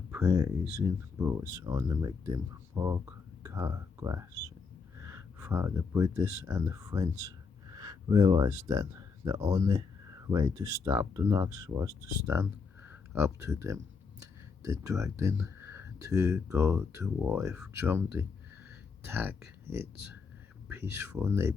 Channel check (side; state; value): right; quieter; 5.1 dB